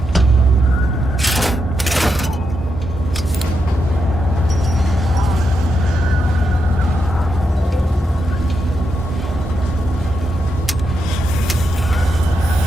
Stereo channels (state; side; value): normal; both; correlation 0.84